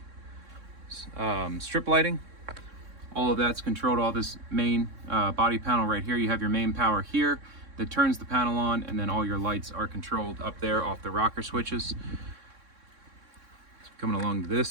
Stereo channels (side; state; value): left; late; 3.6 ms